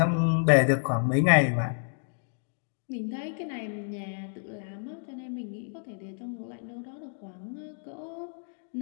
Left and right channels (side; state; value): right; silent; digital silence